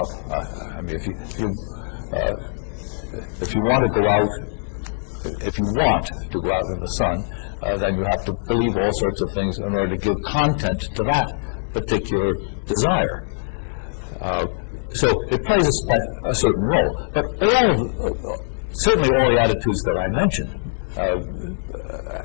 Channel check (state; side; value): silent; right; 64 dB below the other